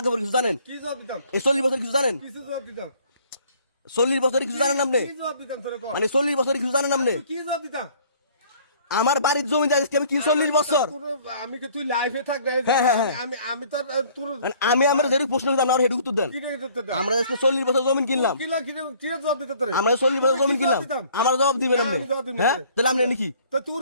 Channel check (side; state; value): both; inverted; correlation -0.56